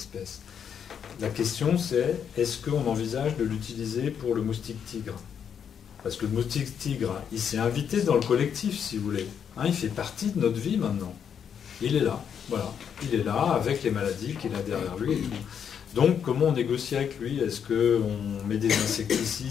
La question, c'est, est-ce qu'on envisage de l'utiliser pour le moustique tigre? Parce que le moustique tigre, il s'est invité dans le collectif, si vous voulez. Il fait partie de notre vie maintenant. Il est là, voilà. Il est là avec les maladies qu'il a derrière lui et tout. Donc, comment on négocie avec lui? Est-ce qu'on met des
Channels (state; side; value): quieter; right; 7.8 dB